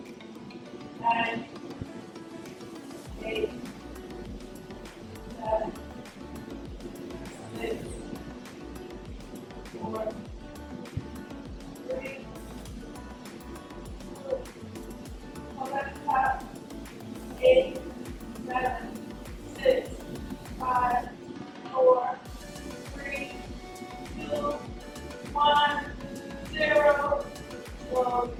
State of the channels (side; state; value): both; identical; correlation 1.00